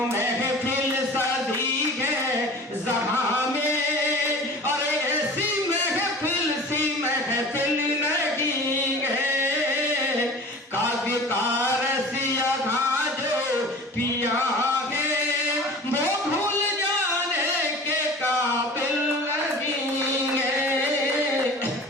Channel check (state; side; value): normal; both; correlation 0.40